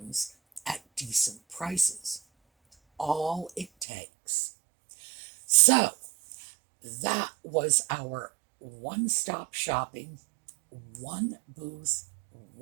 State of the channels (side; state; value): left; drops out; at 3.9 s